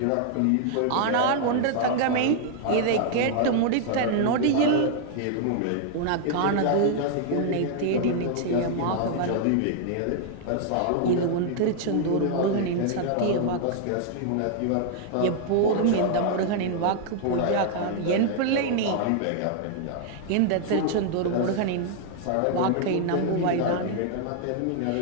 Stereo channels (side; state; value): both; different; correlation -0.01